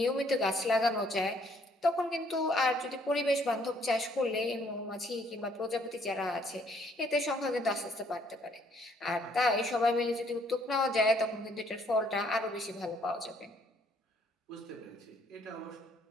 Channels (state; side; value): normal; both; correlation 0.65